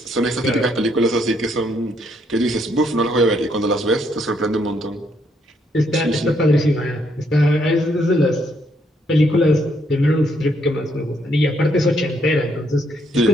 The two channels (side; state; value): both; normal; correlation 0.72